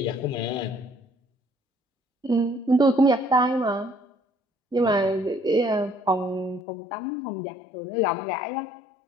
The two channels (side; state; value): right; drops out; at 6.6 s